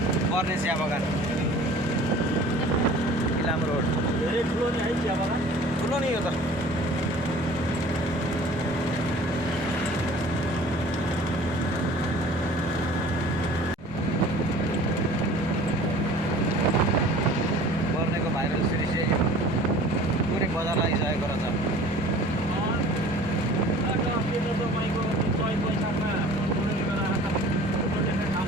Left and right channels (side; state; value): both; normal; correlation 0.46